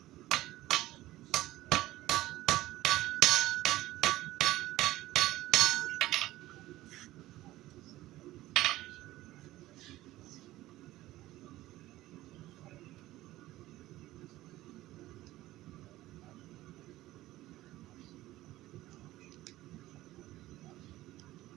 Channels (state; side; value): quieter; left; 16.5 dB